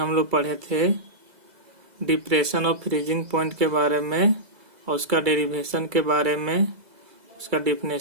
लोग पढ़े थे डिप्रेशन ऑफ फ्रीजिंग पॉइंट के बारे में और उसका डेरिवेशन के बारे में, उसका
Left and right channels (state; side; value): late; left; 2.0 ms